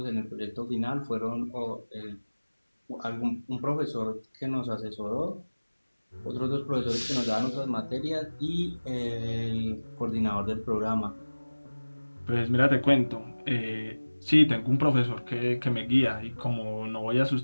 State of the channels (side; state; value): both; inverted; correlation -1.00